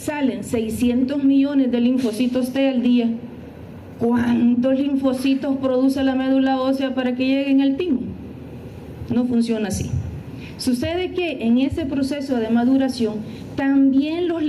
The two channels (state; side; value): identical; both; correlation 1.00